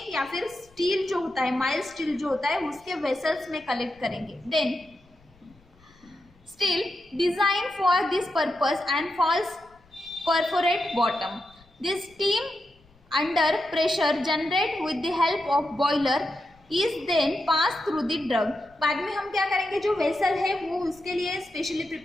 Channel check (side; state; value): left; noise; rumble, 30 dB below the sound